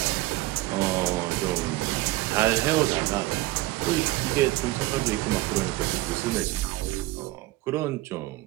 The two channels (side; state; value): left; quieter; 18.5 dB